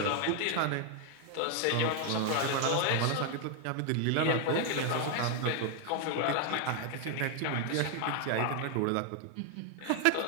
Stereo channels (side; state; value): both; different; correlation 0.00